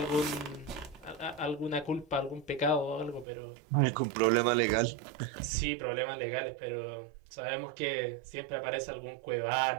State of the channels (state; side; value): drops out; left; at 3.2 s